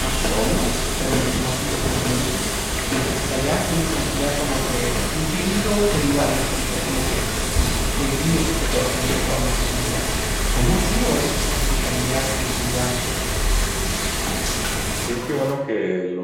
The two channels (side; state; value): both; identical; correlation 1.00